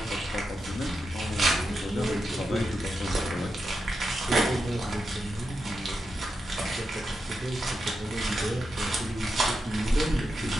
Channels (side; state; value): both; normal; correlation 0.87